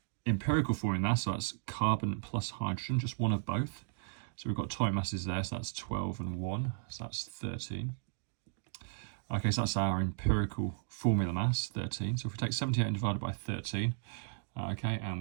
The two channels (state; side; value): silent; left; digital silence